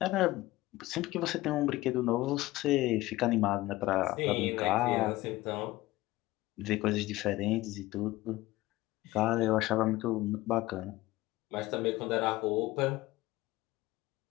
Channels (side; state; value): right; quieter; 18.1 dB